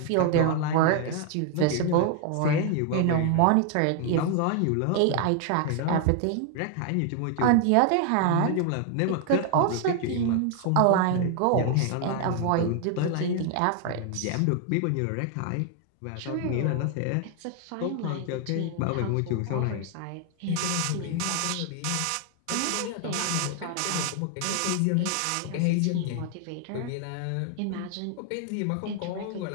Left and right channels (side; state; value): both; different; correlation 0.00